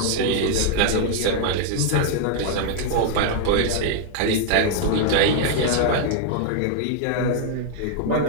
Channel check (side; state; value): both; different; correlation 0.00